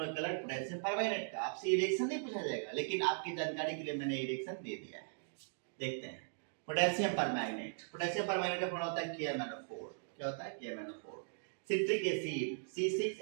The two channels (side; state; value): left; silent; digital silence